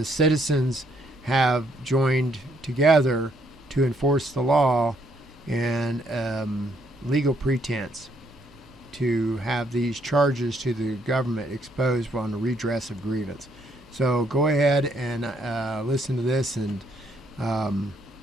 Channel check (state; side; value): noise; right; hum, 28 dB below the sound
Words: citizens have joined together to enforce the law and legal pretense to have these charges to the government exposed on the redress of grievance. So go ahead and listen to this and